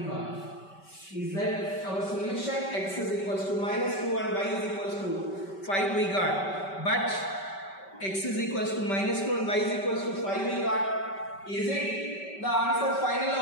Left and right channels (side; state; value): right; late; 5.2 ms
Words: Is that our solution? X is equals to minus 2 and y is equals to 5 we got. But x is equals to minus 2 and y is equals to 5 we got. Is it the answer final